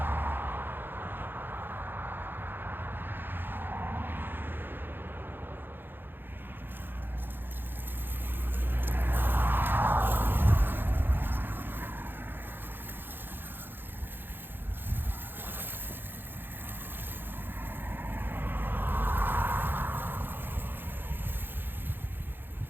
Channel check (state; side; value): late; left; 0.098 ms